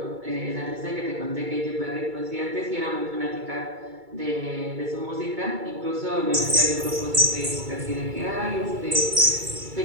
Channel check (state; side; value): late; left; 2.3 ms